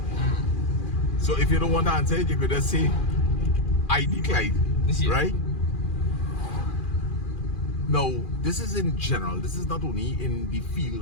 So if you don't want to answer it, you could just say, I decline, Yeah. right? Now, this is in general. This is not only in the field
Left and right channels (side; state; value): right; late; 2.4 ms